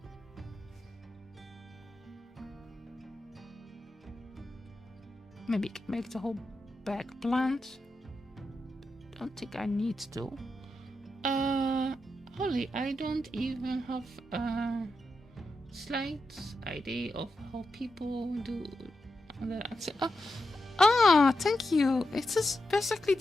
Maybe make the whole back bland. Don't think I need to. Holly, I don't even have a slight idea of how people do that. Thank you. It's just basically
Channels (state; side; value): normal; both; correlation 0.88